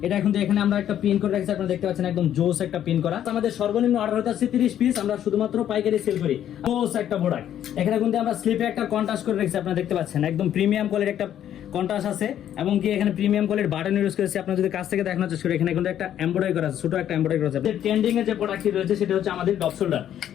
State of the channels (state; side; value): quieter; right; 10.7 dB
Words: এটা এখন এখানে আমরা একটা পিন করে রাখছি, আপনারা দেখতে পাচ্ছেন একদম জোস একটা পিন করা। আমাদের সর্বনিম্ন অর্ডার হতে আছে 30 পিস, আমরা শুধুমাত্র পাইকারি সেল করি। জোস একটা প্রোডাক্ট। এখানে কিন্তু আমরা স্লিপে একটা কন্ট্রাস্ট করে রাখছি, আপনারা দেখতে পাচ্ছেন একদম প্রিমিয়াম কোয়ালিটির একটা কন্ট্রাস্ট আছে এবং কি এখানে প্রিমিয়াম কোয়ালিটির বাটন ইউজ করেছি। আপনারা যদি কাছ থেকে দেখানোর চেষ্টা করি এখানে কিন্তু একটা এমব্রয়ডারি করা আছে, ছোট একটা এমব্রয়ডারি করা আছে। ট্রেন্ডিং এর যে প্রোডাক্টটি রয়েছে সেটা হচ্ছে আমাদের ডপ শোল্ডার।